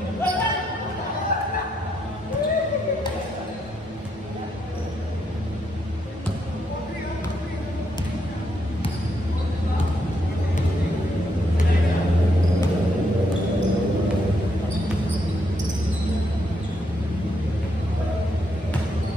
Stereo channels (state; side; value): normal; both; correlation 0.77